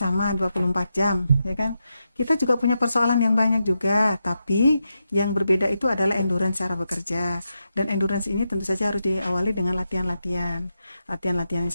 24 jam, ya kan? Kita juga punya persoalan yang banyak juga, tapi yang berbeda itu adalah endurance cara bekerja. Dan endurance ini tentu saja harus diawali dengan latihan-latihan. Latihan-latihan yang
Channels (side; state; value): both; inverted; correlation -0.87